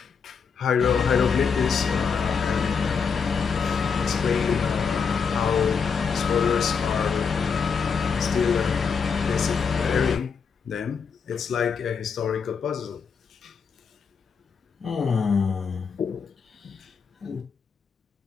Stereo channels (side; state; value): right; quieter; 6.0 dB